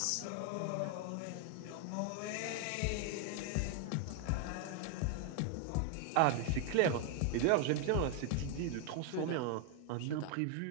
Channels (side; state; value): both; different; correlation 0.00